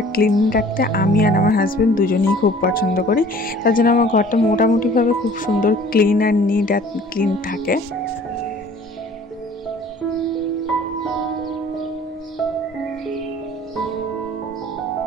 ক্লিন রাখতে আমি আর আমার হাজব্যান্ড দুজনেই খুব পছন্দ করি, তার জন্য আমার ঘরটা মোটামুটিভাবে খুব সুন্দর ক্লিন আর নিট আর ক্লিন থাকে।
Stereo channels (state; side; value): normal; both; correlation 0.50